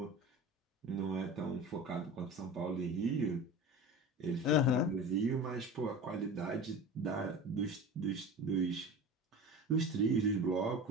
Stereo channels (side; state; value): both; normal; correlation 0.33